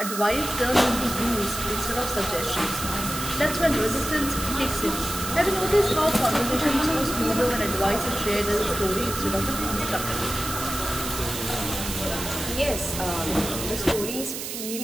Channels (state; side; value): noise; right; hiss, 6 dB below the sound